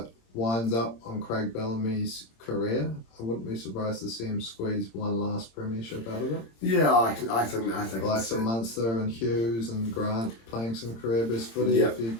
on Craig Bellamy's career, I wouldn't be surprised to see him squeeze one last premiership out of it. Yeah, I think like some Munster and Hughes and Grant playing some career best footy. Yep.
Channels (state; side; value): late; right; 26 ms